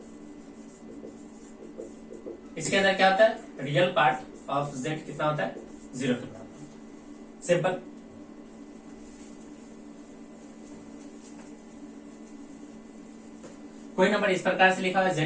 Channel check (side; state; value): both; identical; correlation 1.00